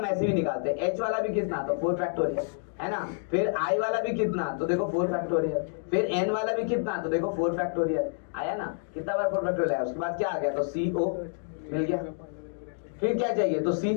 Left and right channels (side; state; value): right; silent; digital silence